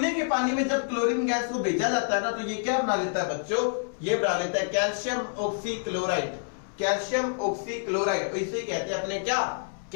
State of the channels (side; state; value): right; silent; 60 dB below the other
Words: के पानी में जब क्लोरीन गैस को भेजा जाता है ना, तो ये क्या बना लेता है बच्चों? ये बना लेता है कैल्शियम ऑक्सीक्लोराइड। कैल्शियम ऑक्सीक्लोराइड, इसे कहते हैं अपने क्या?